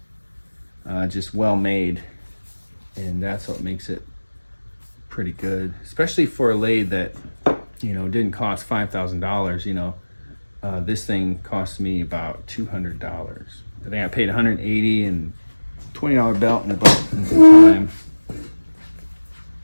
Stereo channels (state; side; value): inverted; both; correlation -1.00